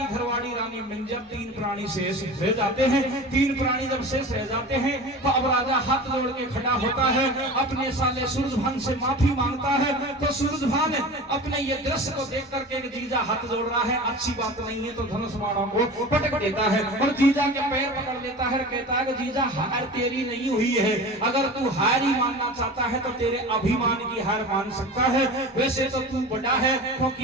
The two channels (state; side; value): normal; both; correlation 0.34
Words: घरवाड़ी रानी मिंजर, तीन प्राणी शेष रह जाते हैं। तीन प्राणी जब शेष रह जाते हैं तो अब राजा हाथ जोड़ के खड़ा होता है, अपने साले सूरजभान से माफी मांगता है। तो सूरजभान अपने ये दृश्य को देख करके जीजा हाथ जोड़ रहा है, अच्छी बात नहीं है, तो धनुष बाणों को पटक देता है और जीजा के पैर पकड़ लेता है, कहता है कि जीजा हार तेरी नहीं हुई है, अगर तू हार ही मानना चाहता है तो तेरे अभिमान की हार मान सकता है। वैसे तो तू बड़ा है,